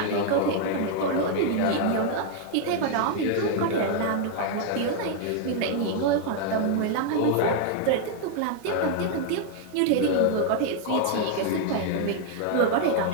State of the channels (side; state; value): both; different; correlation 0.00